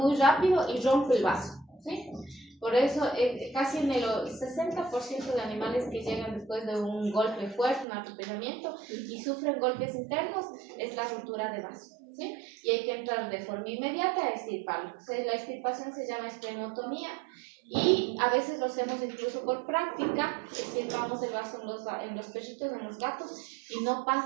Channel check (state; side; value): drops out; left; at 7.9 s